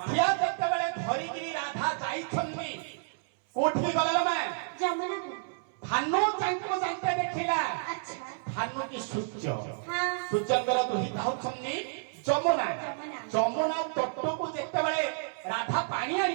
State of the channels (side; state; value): left; silent; 58 dB below the other